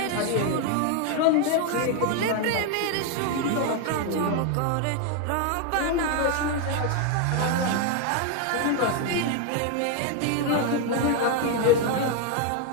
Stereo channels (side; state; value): both; different; correlation 0.01